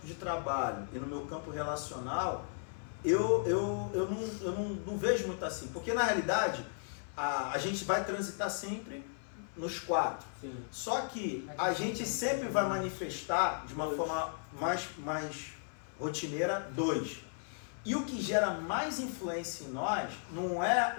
de trabalho e no meu campo relacional, eu não vejo muito assim. Porque na realidade, a gente vai transitar sempre nos 4. Sim. Só que a gente sempre vai manifestar de uma forma mais rotineira 2. E o que gera mais influência em nós não é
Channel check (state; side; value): silent; right; 54 dB below the other